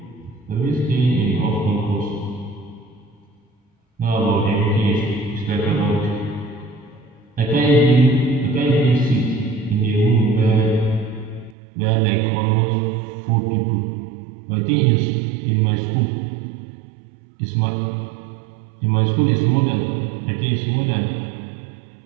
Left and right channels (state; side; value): drops out; left; at 11.6 s